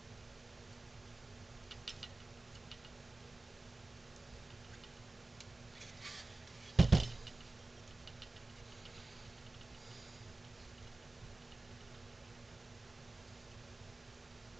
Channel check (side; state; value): left; quieter; 3.1 dB